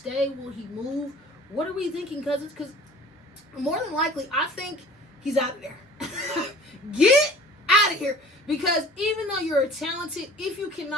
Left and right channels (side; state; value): both; normal; correlation 0.46